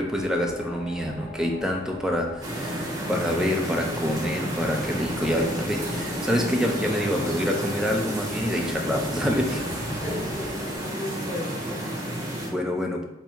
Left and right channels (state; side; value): normal; both; correlation 0.66